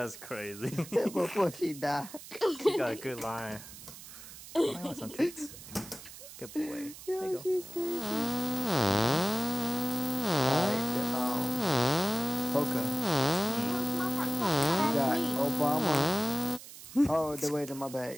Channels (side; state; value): right; noise; hiss, 15 dB below the sound